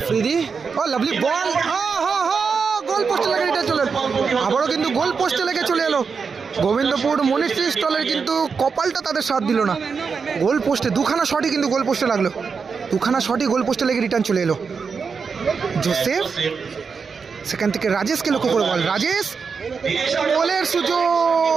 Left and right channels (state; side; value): quieter; left; 5.5 dB